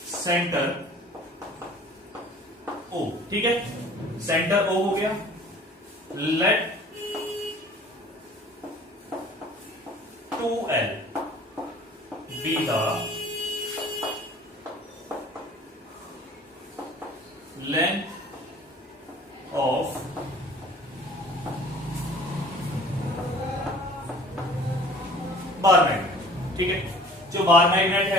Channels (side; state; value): both; normal; correlation 0.49